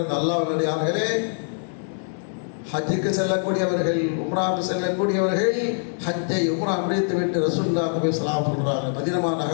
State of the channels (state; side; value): silent; right; digital silence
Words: அல்லாஹ்வினடியார்களே, ஹஜ்ஜுக்கு செல்லக்கூடியவர்கள், உம்ராவுக்கு செல்லக்கூடியவர்கள் ஹஜ்ஜை உம்ரா முடித்துவிட்டு ரசூலுல்லாஹ் போய் சலாம் சொல்றாங்க, மதீனா